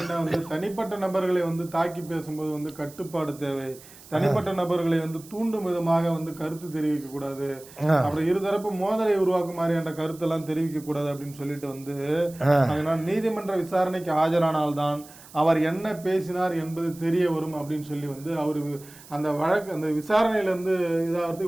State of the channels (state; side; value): noise; right; hiss, 20 dB below the sound